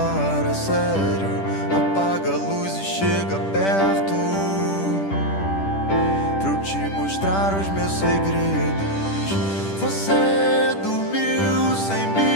a sério. Apaga a luz e chega perto, pra eu te mostrar os meus segredos. Você dormiu sem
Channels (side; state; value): right; late; 10 ms